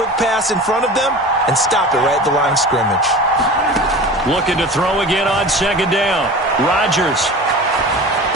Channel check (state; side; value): normal; both; correlation 0.35